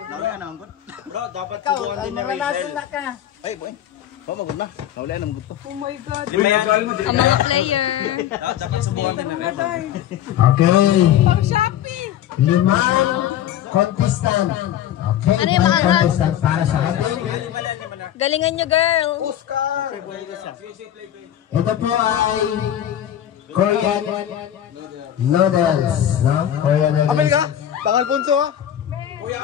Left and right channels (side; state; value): right; quieter; 11.1 dB